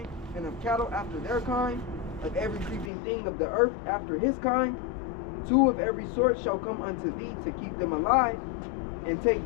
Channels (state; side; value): drops out; right; at 2.9 s